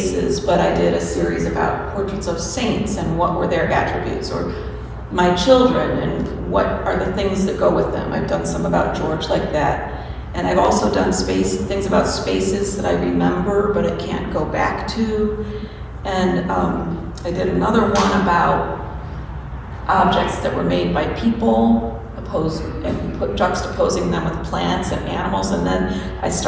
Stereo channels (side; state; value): both; identical; correlation 1.00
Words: but I did a series about portraits of saints and what were their attributes, or my children and what are the things that go with them. I've done some about George like that. And I've also done things about spaces that I remember, but I can't go back to. And I did another one about objects that were made by people, juxtaposing them with plants and animals. And then I